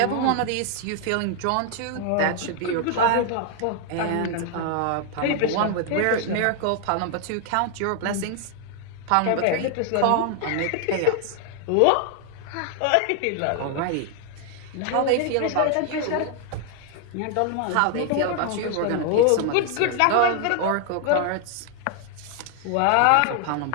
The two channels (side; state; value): both; different; correlation 0.00